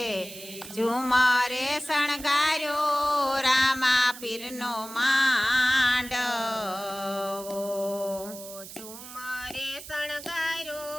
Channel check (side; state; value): right; noise; hiss, 14 dB below the sound